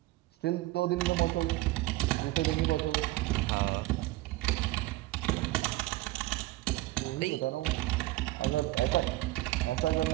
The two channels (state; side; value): quieter; left; 18.5 dB